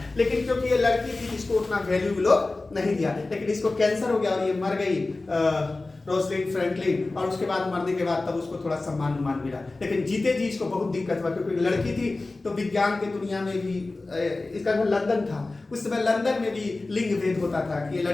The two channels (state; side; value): quieter; right; 3.3 dB